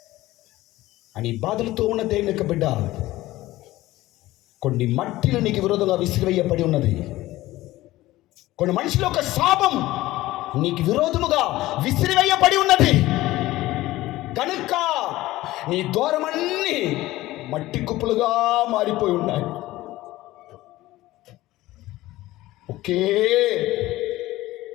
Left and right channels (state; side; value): quieter; right; 17.1 dB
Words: అని బాధలతో ఉన్న దేవుని యొక్క బిడ్డ, కొన్ని మట్టిలు నీకు విరోధంగా విసిరివేయబడి ఉన్నది. కొన్ని మనుషుల యొక్క శాపం నీకు విరోధముగా విసిరివేయబడి ఉన్నది. కనుక నీ ద్వారమన్నీ మట్టి కుప్పలుగా మారిపోయి ఉన్నాయి. ఒకే